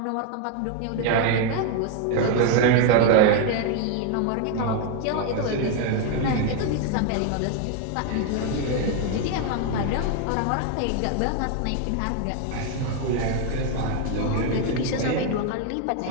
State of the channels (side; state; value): both; different; correlation 0.01